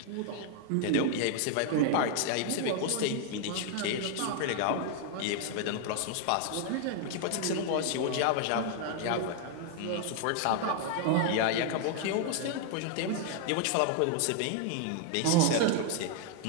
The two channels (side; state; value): both; different; correlation 0.00